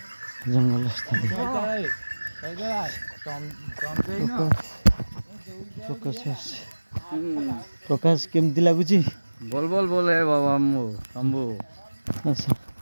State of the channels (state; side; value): inverted; both; correlation -1.00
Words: ଜଙ୍ଗଲ ସ୍ଥାନ। ପ୍ରକାଶ କେମିତି ଲାଗୁଛି? बोल है बाबा शंभू। ଆଚ୍ଛା